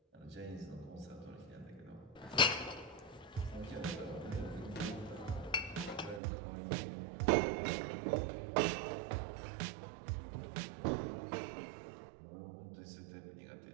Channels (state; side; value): drops out; left; at 6.2 s